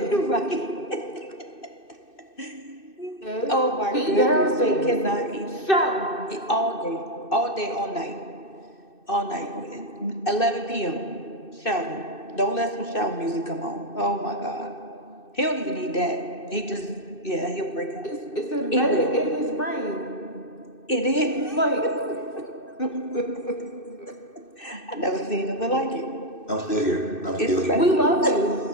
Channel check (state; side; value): late; right; 2.6 ms